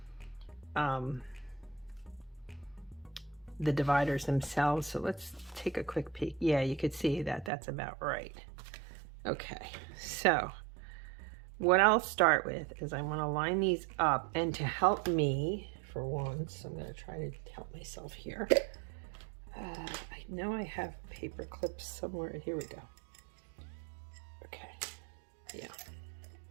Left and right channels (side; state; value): left; drops out; at 7.5 s